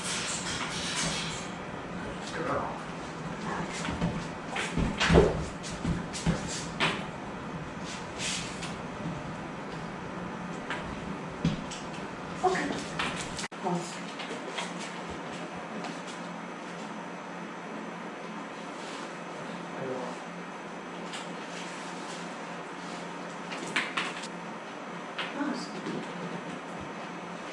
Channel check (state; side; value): identical; both; correlation 1.00